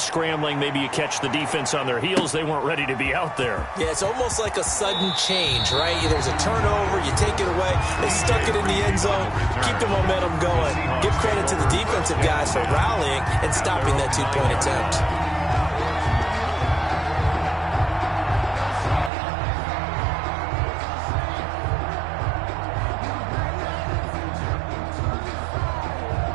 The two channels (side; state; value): left; drops out; at 19.1 s